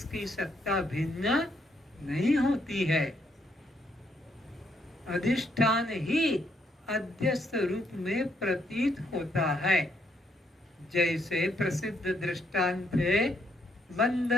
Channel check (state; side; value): normal; both; correlation 0.74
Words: की सत्ता भिन्न नहीं होती है। अधिष्ठान ही अध्यस्त रूप में प्रतीत होता है। जैसे प्रसिद्ध दृष्टांत है, बंद